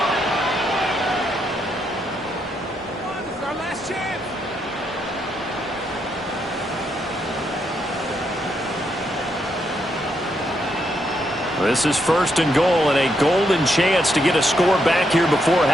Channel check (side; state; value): both; normal; correlation 0.78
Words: This is first and goal and a golden chance to get a score back here before